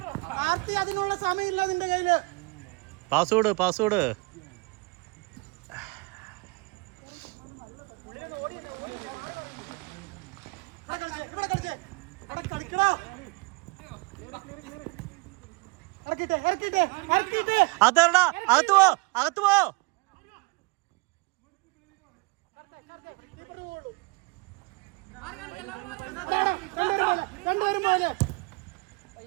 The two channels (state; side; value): quieter; left; 27.8 dB